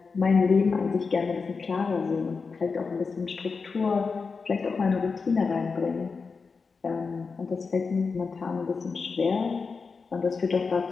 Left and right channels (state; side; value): quieter; right; 4.8 dB